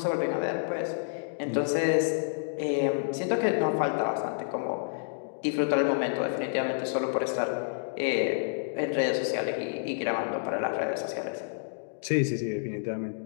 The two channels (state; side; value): silent; right; digital silence